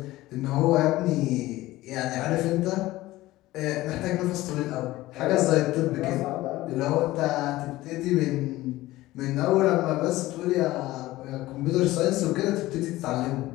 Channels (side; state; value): right; quieter; 17.4 dB